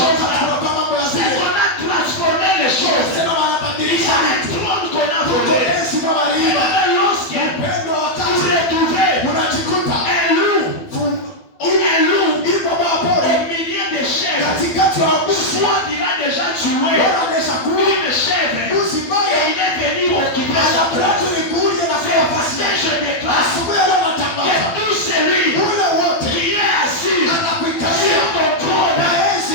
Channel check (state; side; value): late; right; 12 ms